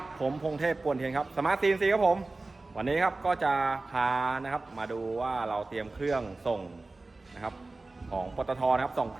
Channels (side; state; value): left; quieter; 3.3 dB